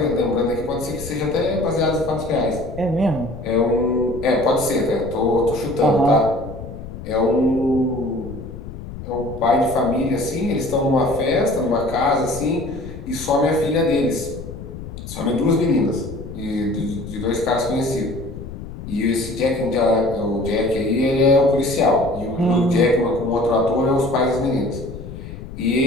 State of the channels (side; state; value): left; noise; rumble, 11 dB below the sound